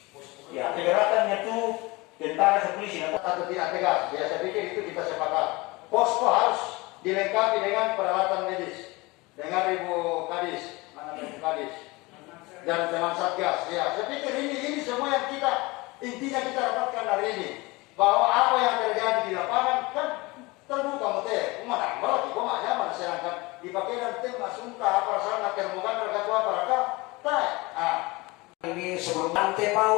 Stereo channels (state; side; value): quieter; right; 23.4 dB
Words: Ya keberatannya itu tentara si polisi atau tidak tegas. Ya saya pikir itu kita sepakat. Posko harus dilengkapi dengan peralatan medis, dengan ribu kadis, dan teman satgas. Ya, saya pikir ini semua yang intinya kita dapatkan hari ini, bahwa apa yang terjadi di lapangan kan terbuka mute, umat berarti koma nyaman sedangkan dipakai dan tembak sumpah apa sana terbuka terketua para Ini sebelum